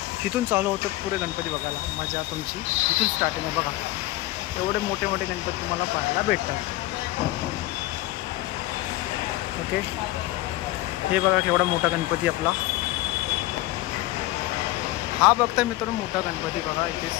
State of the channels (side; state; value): right; quieter; 17.4 dB